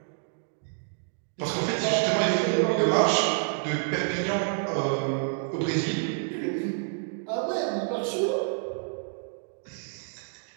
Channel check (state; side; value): silent; left; digital silence